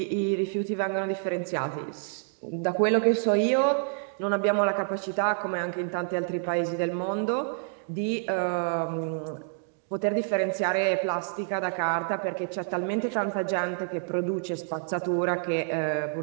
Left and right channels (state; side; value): silent; left; digital silence